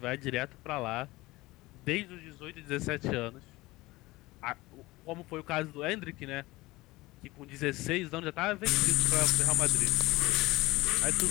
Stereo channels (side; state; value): right; quieter; 20.2 dB